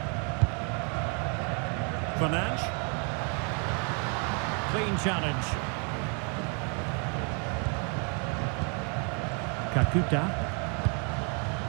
Fernandes. Clean challenge. Kakuta.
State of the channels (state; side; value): quieter; left; 37.3 dB